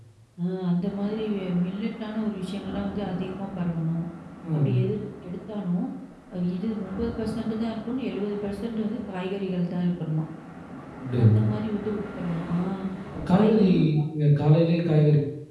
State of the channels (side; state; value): both; identical; correlation 1.00